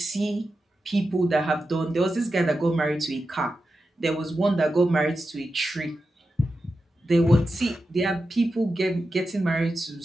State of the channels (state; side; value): normal; both; correlation 0.90